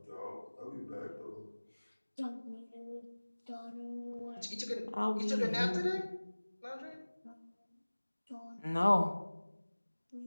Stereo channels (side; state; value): both; inverted; correlation -1.00